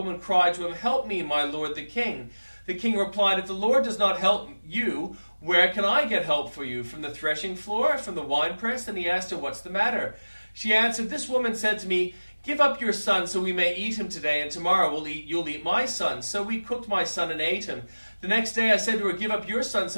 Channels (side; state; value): both; inverted; correlation -1.00